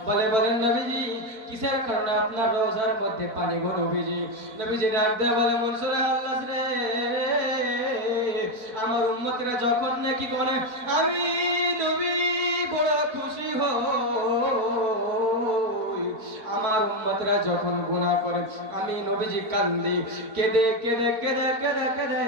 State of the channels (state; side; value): late; left; 4.5 ms